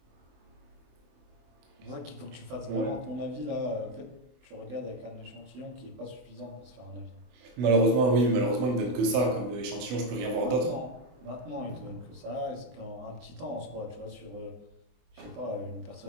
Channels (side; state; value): left; late; 24 ms